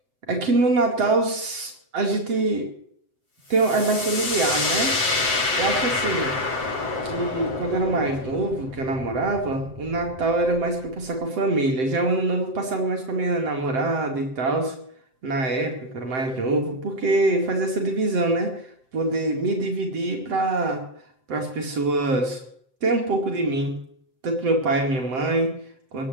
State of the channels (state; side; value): late; left; 7.7 ms